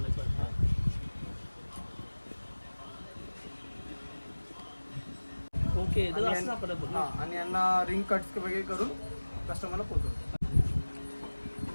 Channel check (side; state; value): both; inverted; correlation -1.00